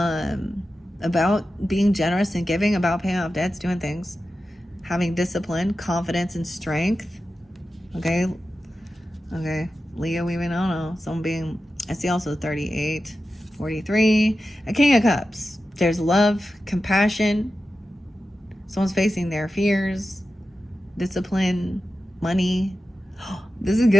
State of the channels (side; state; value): both; normal; correlation 0.92